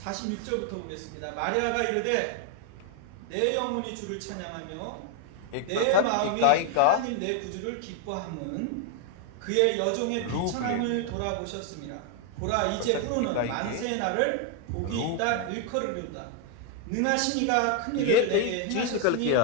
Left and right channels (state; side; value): different; both; correlation 0.00